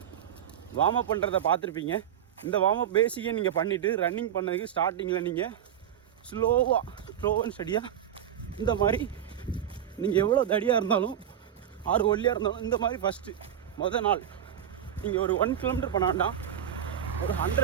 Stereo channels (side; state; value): left; quieter; 9.9 dB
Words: வார்ம் அப் பண்ணுறதை பார்த்துருப்பீங்க. இந்த வார்ம் அப் பேசிக்கே நீங்கள் பண்ணிவிட்டு ரன்னிங் பண்ணதுக்கு ஸ்டார்டிங்கில் நீங்கள் ஸ்லோ அண்ட் ஸ்டடியாக இந்த மாதிரி நீங்கள் எவ்வளோ தடியாக இருந்தாலும் ஆறு ஒல்லியாக இருந்தாலும் இந்த மாதிரி மொதல் நாள் நீங்கள் ஒரு 1 கிலோமீட்டர் பண்ண வேண்டாம், ஒரு